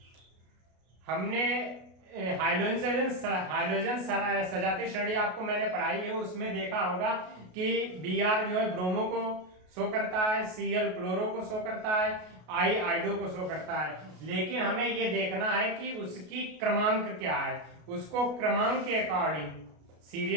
हमने हाइड्रोजन सजातीय श्रेणी आपको मैंने पढ़ाई है, उसमें देखा होगा कि Br जो है ब्रोमो को शो करता है, Cl क्लोरो को शो करता है, I आइडो को शो करता है। लेकिन हमें ये देखना है कि उसकी क्रमांक क्या है, उसको क्रमांक के अकॉर्डिंग,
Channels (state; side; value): late; left; 33 ms